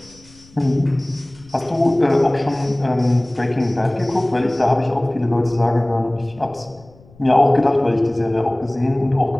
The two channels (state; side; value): noise; left; rumble, 26 dB below the sound